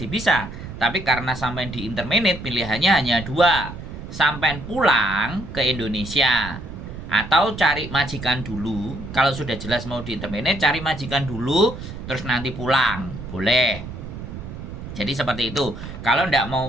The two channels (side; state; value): right; noise; rumble, 10 dB below the sound